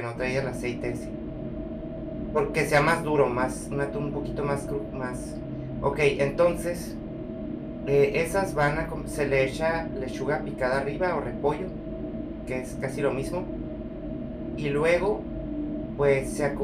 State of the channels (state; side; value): identical; both; correlation 1.00